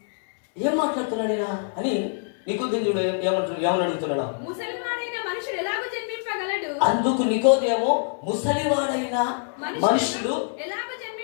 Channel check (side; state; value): right; silent; 62 dB below the other